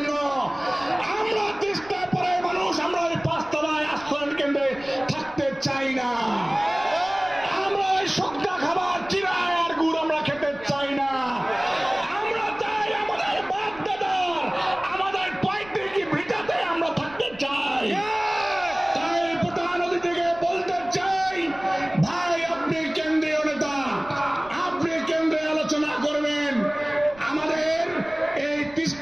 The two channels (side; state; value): right; noise; rumble, 22 dB below the sound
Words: আমরা তিস্তা পাড়ার মানুষ আমরা ওই 5 তলায় আশ্রয়ন কেন্দ্রে থাকতে চাই না। আমরা ওই শুকনা খাবার চিরায় আর গুড় আমরা খেতে চাই না। আমরা চাই আমাদের বাপ দাদার আমাদের পৈতৃক ভিটাতে আমরা থাকতে চাই। তাই প্রধান অতিথিকে বলতে চাই, ভাই আপনি কেন্দ্রীয় নেতা, আপনি কেন্দ্রে আলোচনা করবেন, আমাদের এই